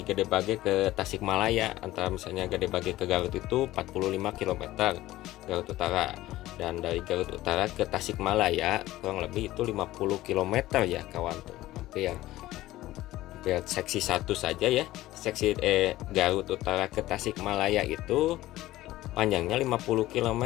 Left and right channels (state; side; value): quieter; right; 16.2 dB